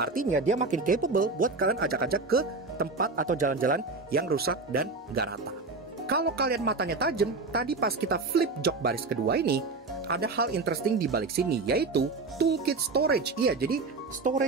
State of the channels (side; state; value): left; quieter; 3.8 dB